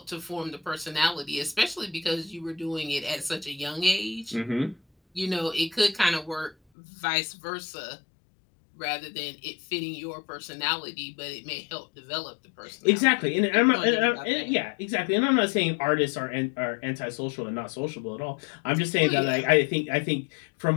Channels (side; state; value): right; drops out; at 6.6 s